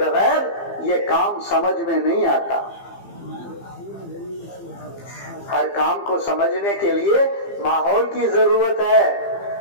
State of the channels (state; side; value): late; right; 15 ms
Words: یہ کام سمجھ میں نہیں آتا۔ ہر کام کو سمجھنے کے لیے ماحول کی ضرورت ہے،